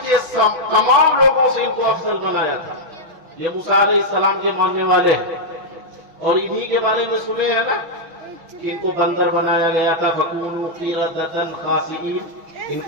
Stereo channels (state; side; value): late; left; 5.9 ms